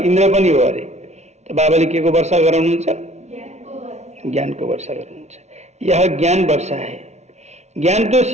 पनि हो अरे। त बाबाले के को वर्षा गराउनुहुन्छ? ज्ञान को वर्षा गराउनुहुन्छ। यह ज्ञान वर्षा है। ज्ञान तो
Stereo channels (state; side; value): late; left; 0.32 ms